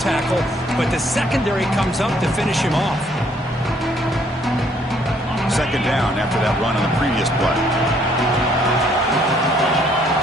but the secondary comes up to finish him off. 2nd down after that run on the previous play.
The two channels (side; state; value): both; normal; correlation 0.65